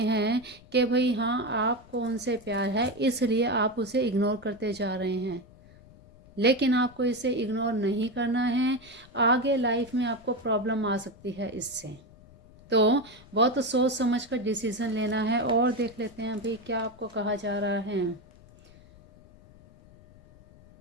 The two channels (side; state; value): left; noise; rumble, 24 dB below the sound